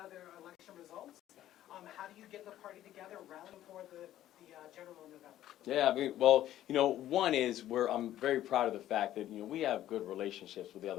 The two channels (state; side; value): quieter; right; 12.9 dB